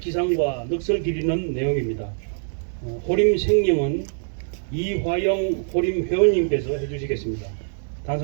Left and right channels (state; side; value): silent; left; digital silence